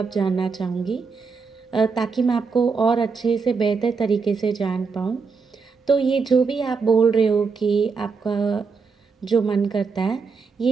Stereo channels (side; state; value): left; quieter; 5.0 dB